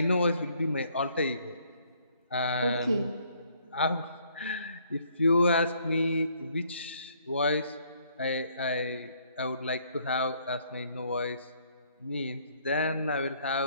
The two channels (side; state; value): both; inverted; correlation -0.66